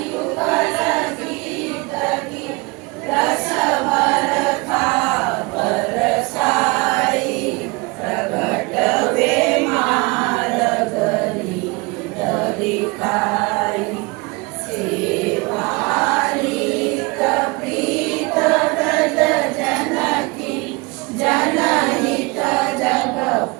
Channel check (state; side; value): quieter; left; 26.4 dB